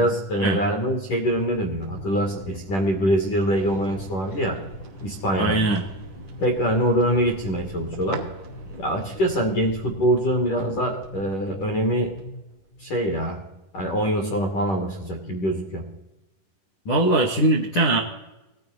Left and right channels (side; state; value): right; late; 10 ms